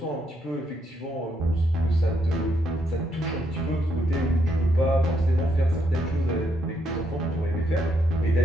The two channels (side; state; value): both; normal; correlation 0.76